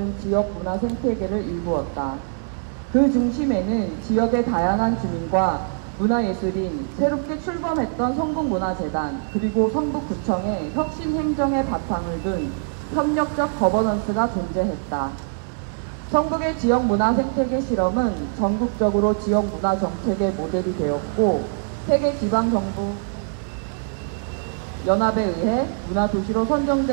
지역 문화 생태계를 일구었다. 그 중심에는 지역의 다양한 주민과 문화예술인, 새롭게 출범했던 성북문화재단, 그리고 성북구청의 혁신행정의 바탕을 둔 협력적 거버넌스가 존재했다. 성북의 지역문화 생태계 실험은 전국적으로 지역문화 정책의 모델이 되었고, 세계 지방정부 연합에 의해 문화도시로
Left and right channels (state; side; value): silent; left; 63 dB below the other